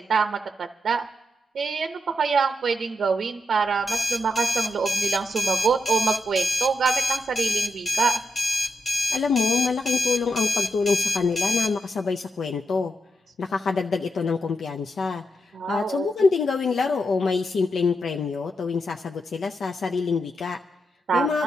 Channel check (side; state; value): both; normal; correlation 0.84